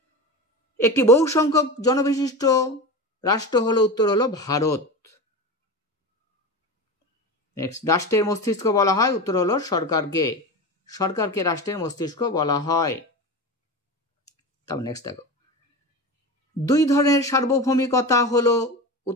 একটি বহু সংখ্যক জনবিশিষ্ট রাষ্ট্র হলো, উত্তর হলো ভারত। নেক্সট, রাষ্ট্রের মস্তিষ্ক বলা হয়, উত্তর হলো সরকারকে। সরকারকে রাষ্ট্রের মস্তিষ্ক বলা হয়। তারপর নেক্সট দেখো, 2 ধরনের সার্বভৌমিকতা হলো,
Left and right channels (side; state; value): both; normal; correlation 0.26